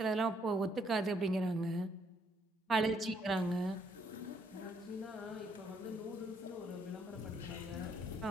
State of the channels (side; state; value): both; normal; correlation 0.70